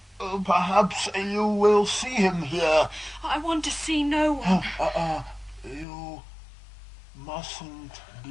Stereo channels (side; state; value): right; drops out; at 5.9 s